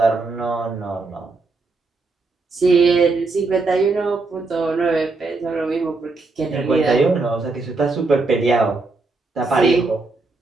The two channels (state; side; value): quieter; left; 3.6 dB